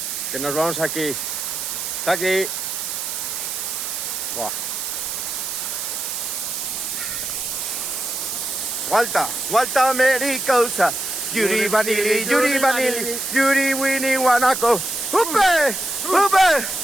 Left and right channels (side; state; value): right; noise; hiss, 4 dB below the sound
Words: que nos vamos aquí. Está aquí. Buah. Vuelta americosa. Yuri vanili, yuri winnie wanako. ¡Upe!